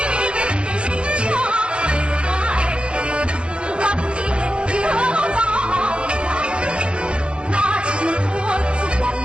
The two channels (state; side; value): late; left; 0.057 ms